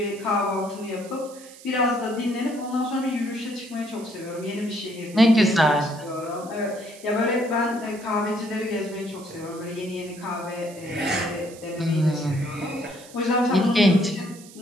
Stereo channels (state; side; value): noise; right; hiss, 20 dB below the sound